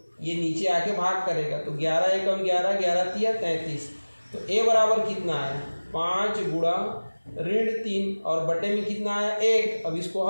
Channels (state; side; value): inverted; both; correlation -1.00